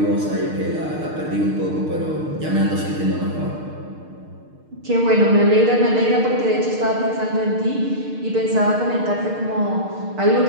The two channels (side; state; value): left; late; 6.5 ms